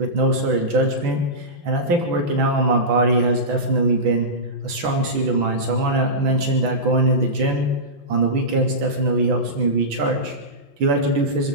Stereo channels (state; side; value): late; left; 6.1 ms